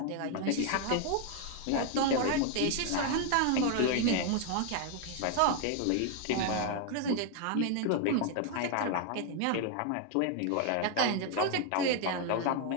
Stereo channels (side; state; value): both; different; correlation 0.01